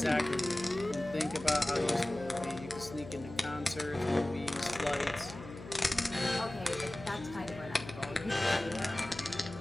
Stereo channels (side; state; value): left; noise; hum, 13 dB below the sound